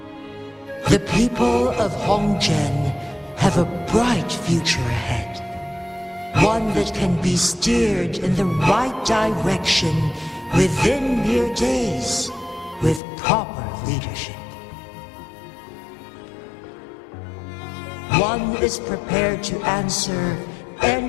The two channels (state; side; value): drops out; right; at 13.0 s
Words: The people of Hongzhen have a bright future ahead. One that can be steered in the right direction within mere days with proper leadership. One is prepared to answer